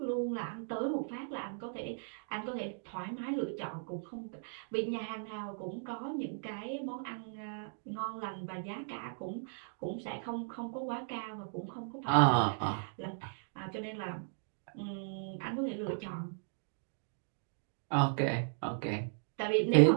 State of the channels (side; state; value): left; silent; digital silence